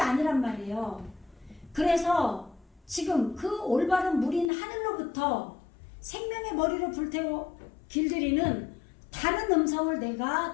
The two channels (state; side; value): drops out; right; at 4.5 s